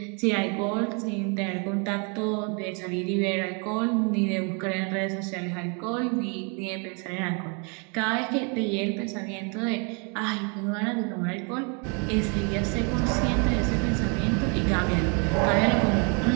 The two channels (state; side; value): quieter; left; 35.4 dB